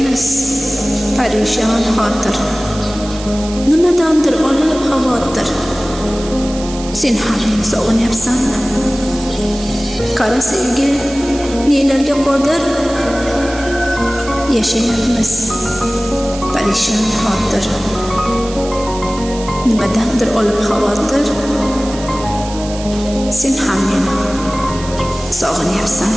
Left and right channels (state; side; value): noise; right; hiss, 14 dB below the sound